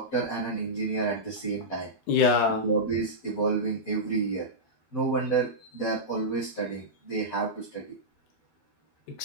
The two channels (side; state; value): right; late; 13 ms